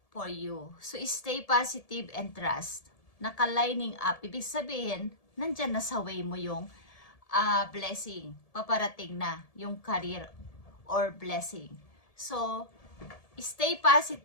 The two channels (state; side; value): late; right; 1.7 ms